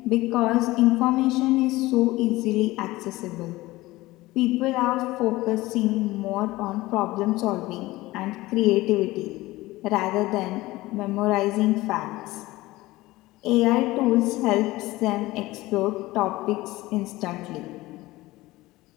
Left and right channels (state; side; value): quieter; right; 18.9 dB